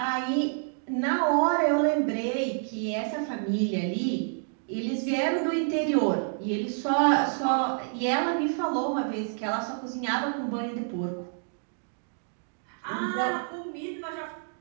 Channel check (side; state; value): left; silent; digital silence